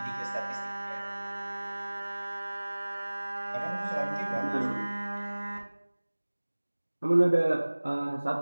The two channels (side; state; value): both; inverted; correlation -1.00